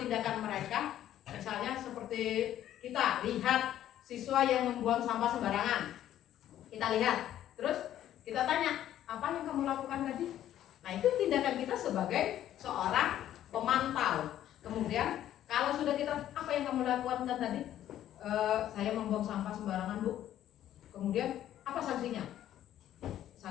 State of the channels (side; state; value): right; quieter; 11.9 dB